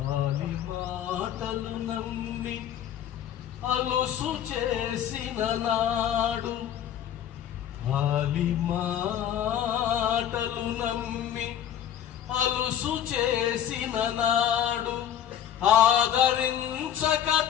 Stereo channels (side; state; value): right; quieter; 10.1 dB